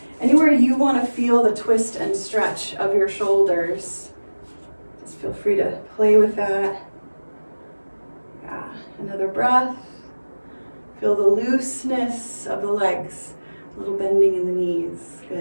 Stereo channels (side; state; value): both; inverted; correlation -1.00